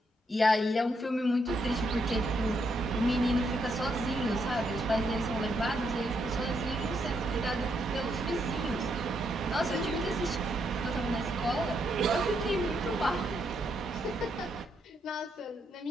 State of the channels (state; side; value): normal; both; correlation 0.77